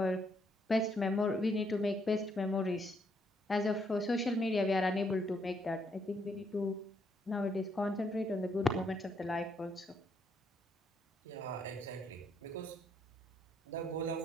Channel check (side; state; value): both; normal; correlation 0.73